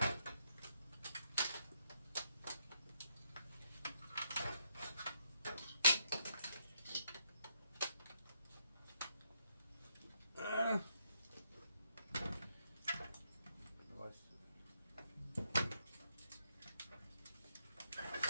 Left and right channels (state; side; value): inverted; both; correlation -0.77